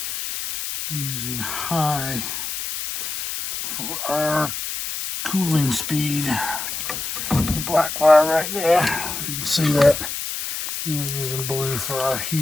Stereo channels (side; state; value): left; noise; hiss, 4 dB below the sound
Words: using high for our cooling speed. The black wire right there, if you can see that. And we're using blue for our